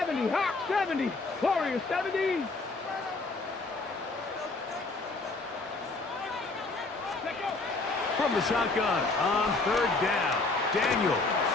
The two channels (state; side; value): quieter; right; 3.5 dB